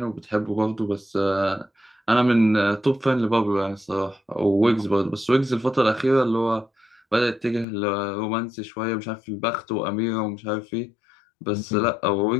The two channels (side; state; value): right; drops out; at 7.7 s